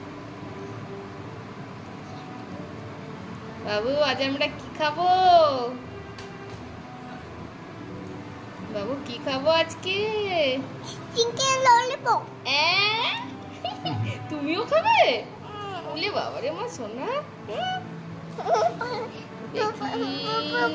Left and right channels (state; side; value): identical; both; correlation 1.00